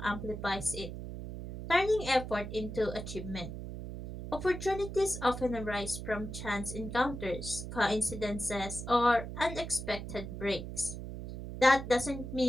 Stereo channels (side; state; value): right; noise; hum, 8 dB below the sound